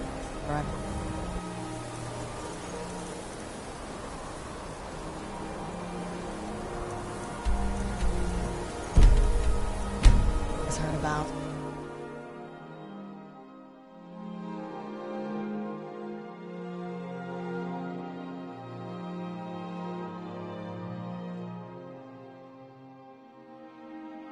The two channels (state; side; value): identical; both; correlation 1.00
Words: Right. Heard about.